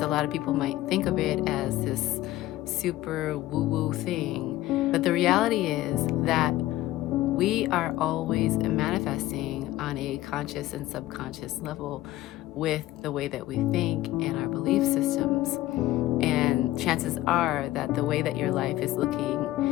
a lot of people might think of it as this super woo woo thing. But the reality is that we are always manifesting on a conscious and subconscious level with the way that we think and our belief systems. And chances are that the way that your life is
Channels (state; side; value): quieter; right; 16.0 dB